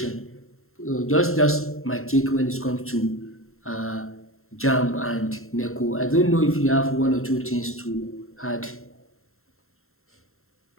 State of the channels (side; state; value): right; late; 0.62 ms